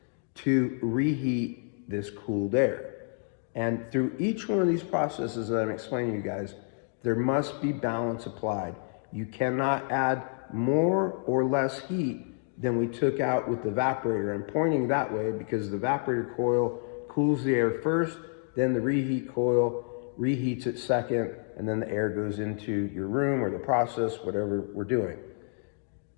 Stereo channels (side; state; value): right; silent; 55 dB below the other